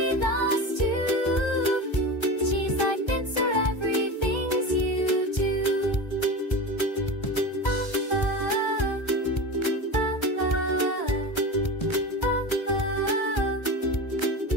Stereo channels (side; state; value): right; late; 1.3 ms